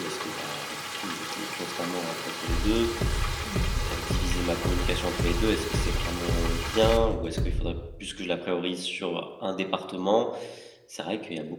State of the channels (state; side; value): identical; both; correlation 1.00